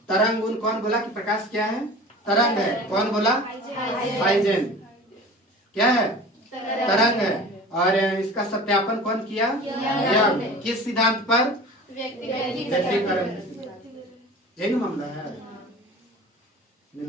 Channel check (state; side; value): normal; both; correlation 0.39